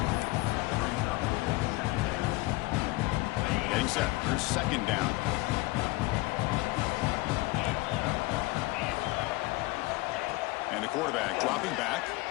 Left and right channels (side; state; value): right; quieter; 21.6 dB